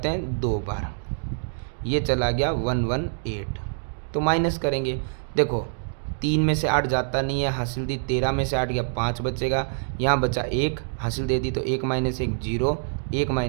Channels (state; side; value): silent; left; digital silence